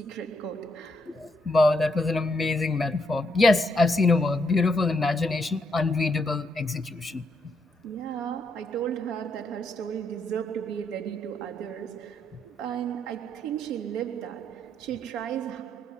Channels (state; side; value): normal; both; correlation 0.77